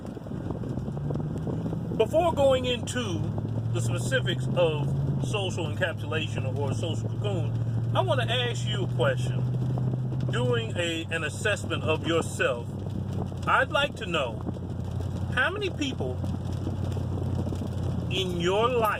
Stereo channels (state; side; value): identical; both; correlation 1.00